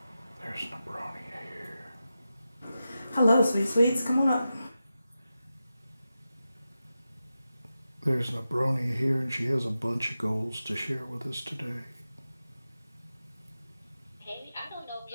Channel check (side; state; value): both; inverted; correlation -0.91